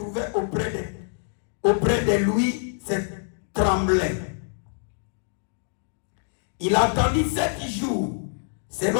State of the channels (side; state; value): right; silent; digital silence